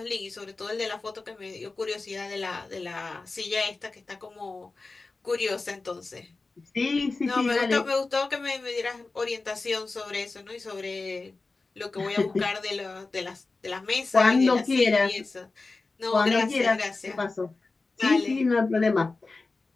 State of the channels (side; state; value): right; quieter; 3.7 dB